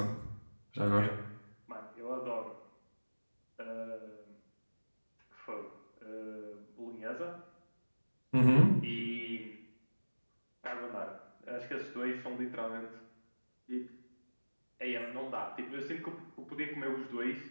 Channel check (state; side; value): inverted; both; correlation -1.00